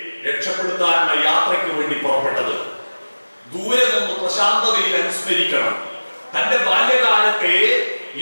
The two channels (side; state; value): both; inverted; correlation -1.00